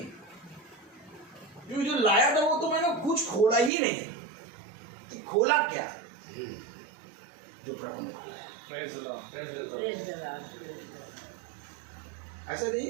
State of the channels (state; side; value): drops out; left; at 3.7 s